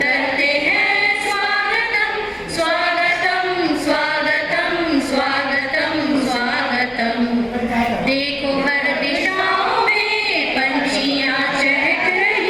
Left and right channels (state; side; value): identical; both; correlation 1.00